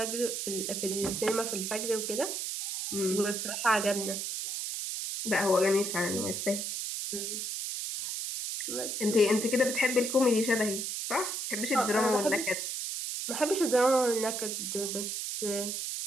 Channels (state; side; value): noise; right; hiss, 3 dB below the sound